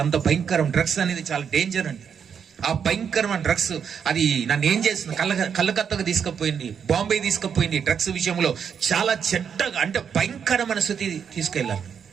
అంత భయంకరం. డ్రగ్స్ అనేది చాలా డేంజర్ అండి. ఆ భయంకరమైన డ్రగ్స్ అది నన్ను ఏం చేస్తుంది, కలకత్తగా తీసుకుపోయింది, బాంబే తీసుకుపోయింది. డ్రగ్స్ విషయంలో చాలా చెడ్డగా అంటే భయంకరమైన స్థితి తీసుకెళ్ళాలి.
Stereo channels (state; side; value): quieter; left; 7.3 dB